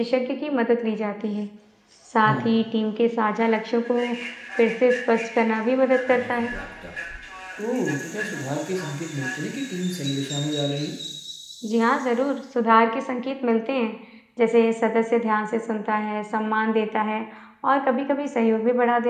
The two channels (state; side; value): identical; both; correlation 1.00